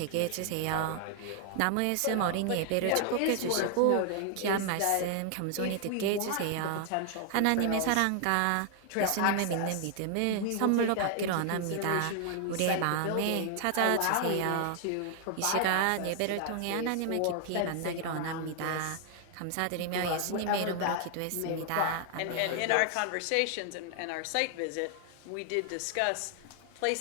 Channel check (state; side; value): different; both; correlation 0.00